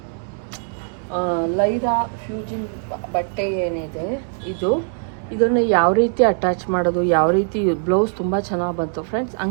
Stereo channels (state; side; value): silent; left; 65 dB below the other